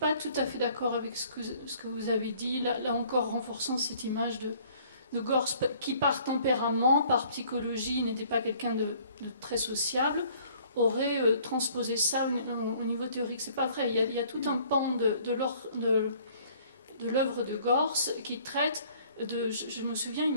tout à fait d'accord avec ce que vous avez dit, là encore renforçant cette image de Gortz qui par tempérament, par psychologie, n'était pas quelqu'un de très sociable, aurait transposé ça au niveau théorique. C'est pas vrai. Il y a tout un pan de l'œuvre de Gortz qui traite de... Je me souviens,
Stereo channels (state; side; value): inverted; both; correlation -0.57